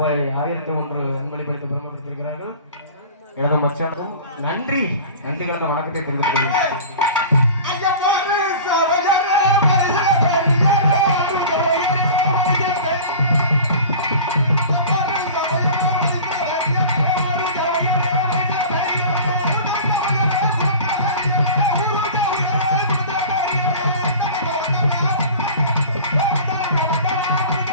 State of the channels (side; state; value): both; inverted; correlation -0.39